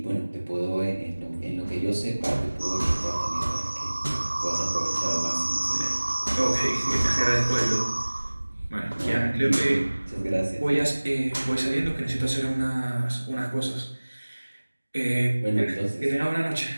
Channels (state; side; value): inverted; both; correlation -1.00